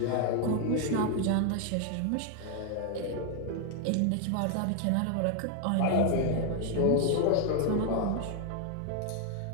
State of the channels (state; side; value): different; both; correlation 0.00